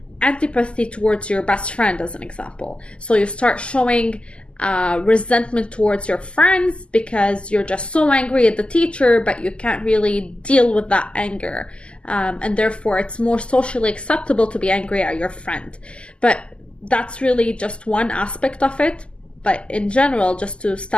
antipathy towards your best friend, as an example. So you start showing resentment towards your friends because you're just so angry at the teacher, but you can't really deal with that anger. And therefore it's more socially acceptable to be angry at your friend. But that's really just one aspect of it. But in general, just to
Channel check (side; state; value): right; late; 0.052 ms